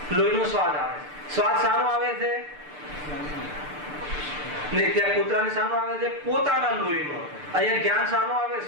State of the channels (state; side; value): late; left; 6.8 ms